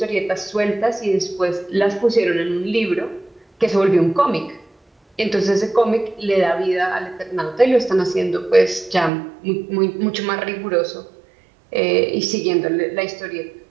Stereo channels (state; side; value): drops out; left; at 9.1 s